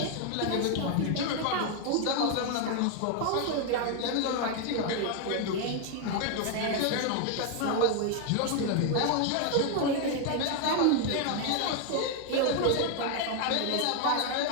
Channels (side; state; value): both; different; correlation 0.00